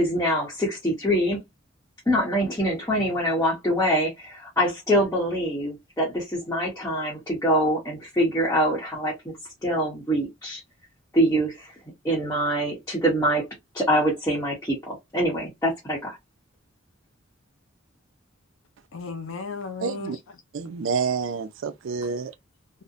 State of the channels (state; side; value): normal; both; correlation 0.29